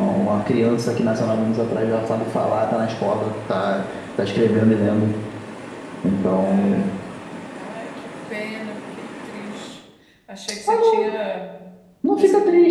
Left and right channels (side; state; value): both; identical; correlation 1.00